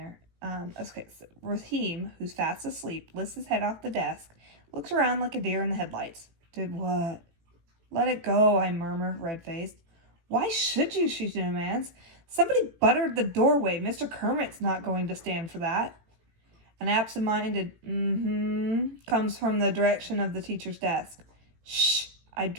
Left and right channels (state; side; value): late; left; 18 ms